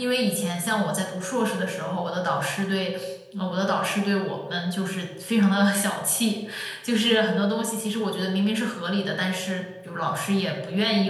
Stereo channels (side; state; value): both; identical; correlation 1.00